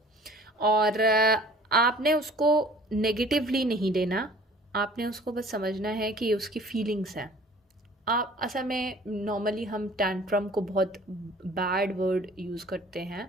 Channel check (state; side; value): normal; both; correlation 0.50